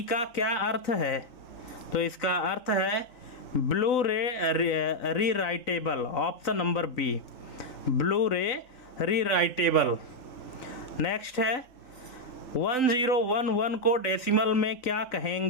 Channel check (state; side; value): late; right; 3.9 ms